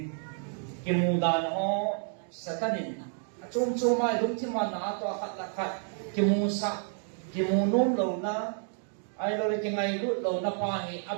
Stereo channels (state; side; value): silent; left; 58 dB below the other